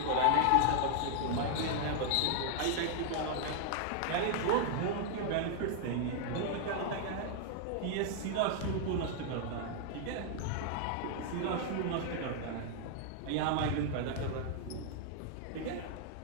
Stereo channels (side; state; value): both; different; correlation 0.00